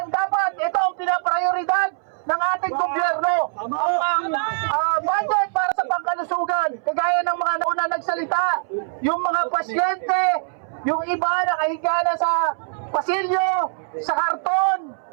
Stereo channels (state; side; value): silent; left; 64 dB below the other